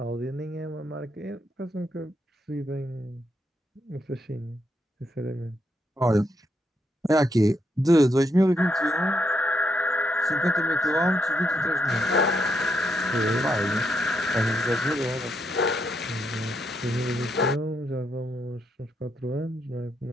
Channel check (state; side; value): normal; both; correlation 0.79